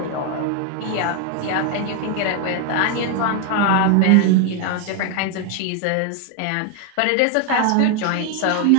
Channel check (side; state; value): both; different; correlation 0.01